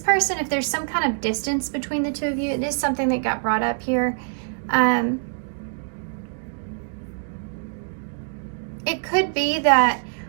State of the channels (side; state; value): left; silent; digital silence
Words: if there's some kind of distance between the two of you, it is something that got brought up here. It could be that